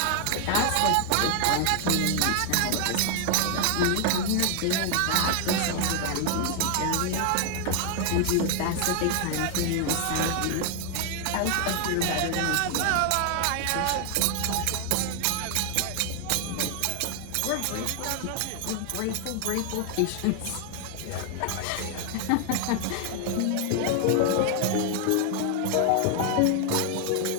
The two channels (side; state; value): both; different; correlation 0.00